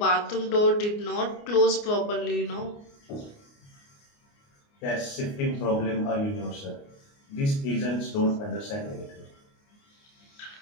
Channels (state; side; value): late; right; 29 ms